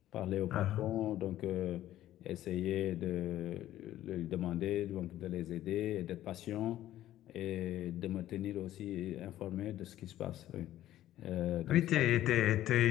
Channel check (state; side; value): quieter; right; 13.4 dB